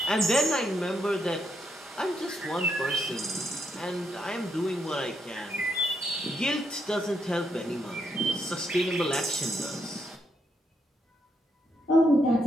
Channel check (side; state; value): both; normal; correlation 0.79